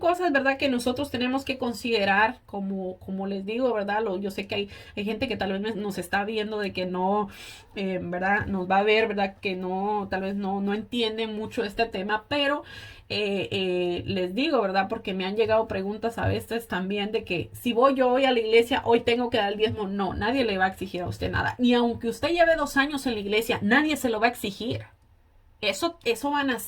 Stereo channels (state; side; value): identical; both; correlation 1.00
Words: ¿verdad? Que nosotros tenemos que considerar, como les digo, ¿verdad? Yo sé que hay gente que tal vez nos está viendo de que no, ¿verdad? Nos va a ver, ¿verdad? Que no, tal vez no entienden mucho este tema, pero les digo, ¿verdad? Porque me han llegado preguntas a veces también de que si voy yo hoy a la iglesia, hoy tengo que dar el diezmo. No, nadie le va a exigir a usted nada. Ni aunque usted lleve 2 años en la iglesia, nadie se lo va a exigir. Eso van a